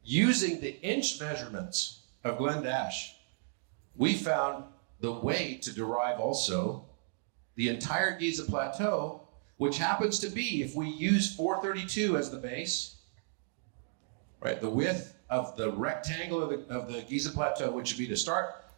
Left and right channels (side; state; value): left; silent; digital silence